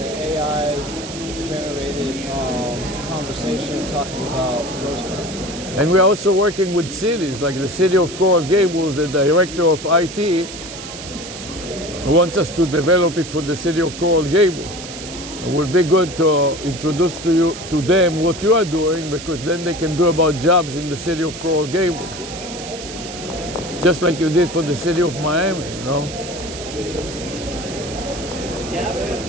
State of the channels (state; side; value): noise; right; hiss, 11 dB below the sound